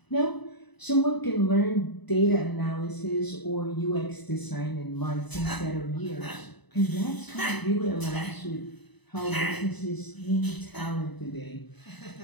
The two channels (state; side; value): late; right; 1.0 ms